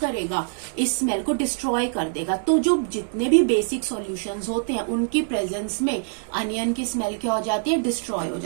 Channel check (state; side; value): silent; left; digital silence